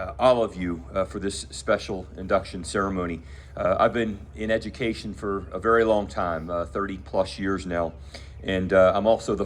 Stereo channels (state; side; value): identical; both; correlation 1.00